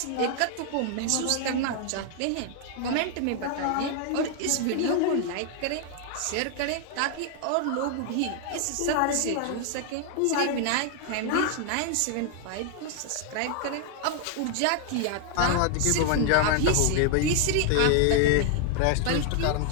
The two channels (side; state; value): both; different; correlation 0.00